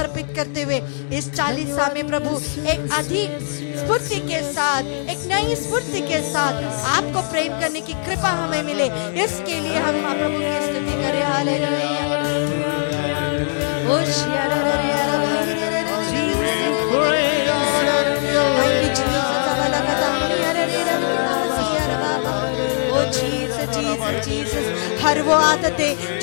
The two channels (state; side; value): silent; right; 65 dB below the other